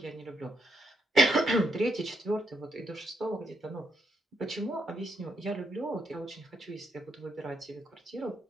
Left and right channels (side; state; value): both; normal; correlation 0.79